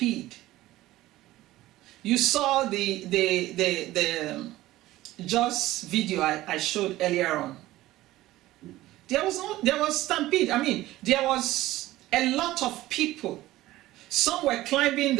You saw the Joss video I showed earlier on. There was stampede. I mean, there was a lot of people. Some were climbing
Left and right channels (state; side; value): quieter; left; 16.5 dB